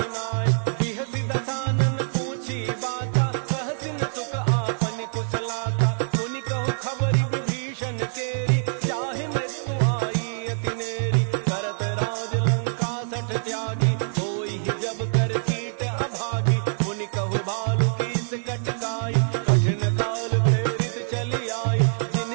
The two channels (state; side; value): silent; left; digital silence